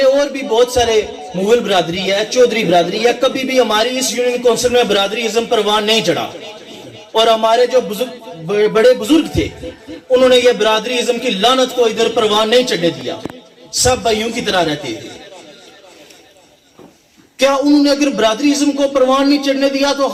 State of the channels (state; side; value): identical; both; correlation 1.00